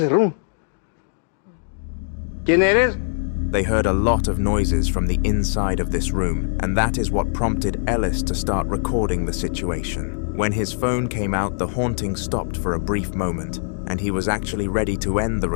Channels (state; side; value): silent; right; digital silence